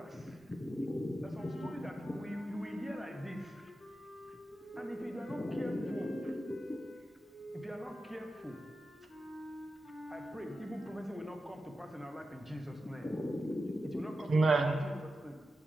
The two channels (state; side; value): normal; both; correlation 0.91